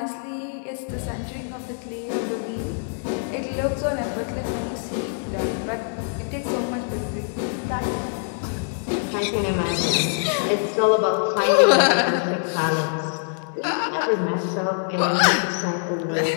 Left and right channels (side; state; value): right; silent; 61 dB below the other